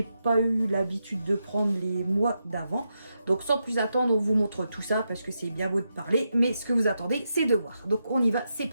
pas eu l'habitude de prendre les mois d'avant. Donc sans plus attendre, on vous montre tout ça parce que c'est bien beau de parler. Mais ce que vous attendez, c'est de voir. Donc on y va, c'est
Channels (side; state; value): both; inverted; correlation -0.86